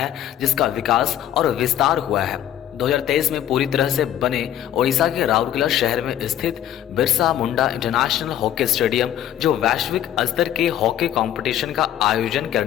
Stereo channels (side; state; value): right; quieter; 11.4 dB